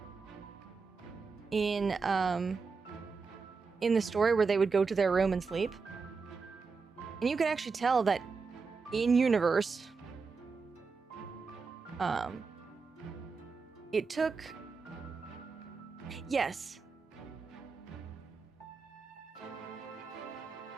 in the story where they would go to their room and sleep. And you can actually tell that in universe, it took, yes.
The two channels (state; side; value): quieter; left; 4.8 dB